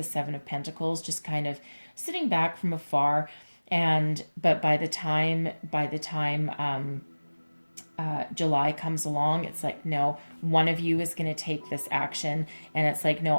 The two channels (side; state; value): both; inverted; correlation -1.00